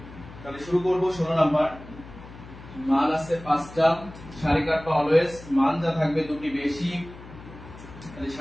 তাহলে শুরু করব 16 নাম্বার। মান আছে 5টা, সারি কাটবা অলওয়েজ, মান যা থাকবে দুটি বেশি, তাহলে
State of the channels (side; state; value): left; noise; hum, 17 dB below the sound